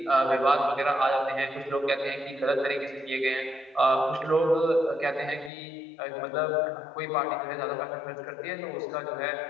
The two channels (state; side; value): drops out; right; at 5.5 s